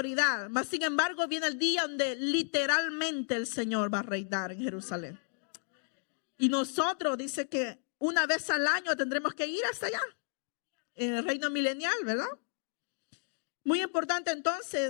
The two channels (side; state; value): right; silent; 55 dB below the other